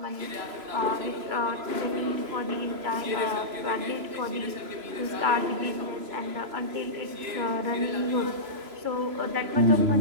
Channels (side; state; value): left; late; 3.0 ms